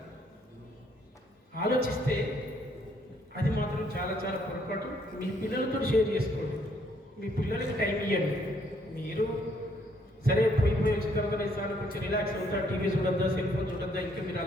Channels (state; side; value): normal; both; correlation 0.68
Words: ఆలోచిస్తే అది మాత్రం చాలా చాలా పొరపాటు. మీ పిల్లలతో షేర్ చేసుకోండి, మీ పిల్లలకి టైం ఇవ్వండి. మీరు సరే పోయి వచ్చిన తర్వాత సార్ కొంచెం రిలాక్స్ అవుతా, టీవీ చూడద్దా, సెల్ ఫోన్ చూడద్దా, ఇంకా మీరు